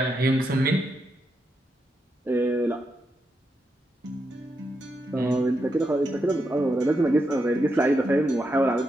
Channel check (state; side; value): normal; both; correlation 0.84